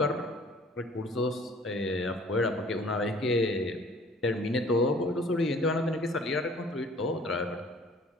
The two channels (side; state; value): both; normal; correlation 0.53